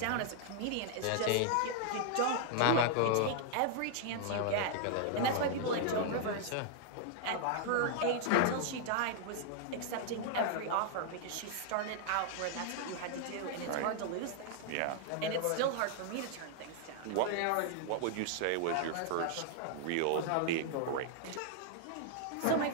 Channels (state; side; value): different; both; correlation -0.01